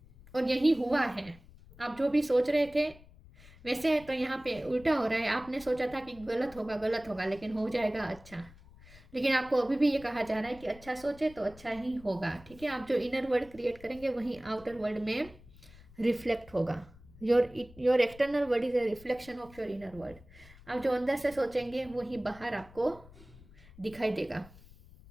और यही हुआ है, आप जो भी सोच रहे थे वैसे तो यहाँ पे उल्टा हो रहा है। आपने सोचा था कि गलत होगा लेकिन हो जाएगा अच्छा, लेकिन आपको अभी भी ये कहा जा रहा है कि अच्छा सोचे तो अच्छा ही होगा, ठीक है। आप जो इनर वर्ल्ड क्रिएट करेंगे वही आउटर वर्ल्ड में रिफ्लेक्ट होगा। Your external world is a reflection of your inner world. आप जो अंदर से सोचेंगे वही बाहर आपको दिखाई देगा।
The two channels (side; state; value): left; noise; rumble, 22 dB below the sound